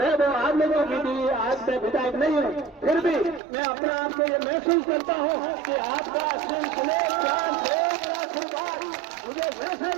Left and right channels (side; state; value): left; drops out; at 3.4 s